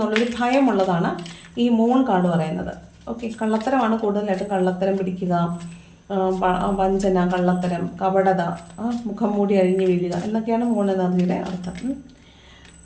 ഭയമുള്ളതാണ് ഈ മൂൺ കാർഡ് പറയുന്നത്. ഓക്കെ, കള്ളത്തരമാണ് കൂടുതലായിട്ട്. കള്ളത്തരം പിടിക്കുക, വഞ്ചന, കള്ളത്തരം, കപടത, മുഖം മൂടി അഴിഞ്ഞു വീഴുക എന്നൊക്കെയാണ് മൂൺ എനർജിയുടെ അർത്ഥം.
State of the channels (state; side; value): identical; both; correlation 1.00